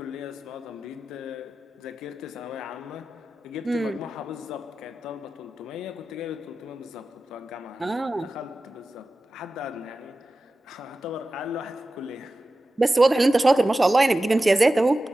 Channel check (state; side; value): normal; both; correlation 0.94